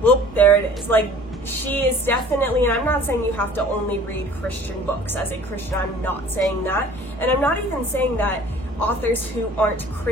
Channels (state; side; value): normal; both; correlation 0.49